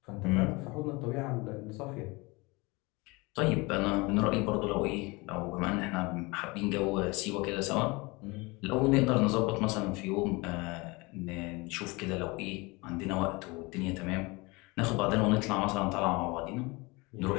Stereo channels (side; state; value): right; quieter; 25.2 dB